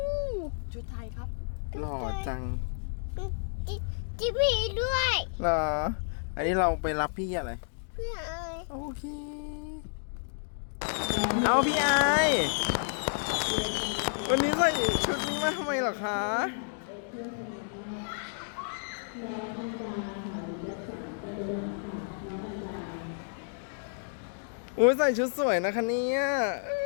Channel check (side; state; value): right; silent; digital silence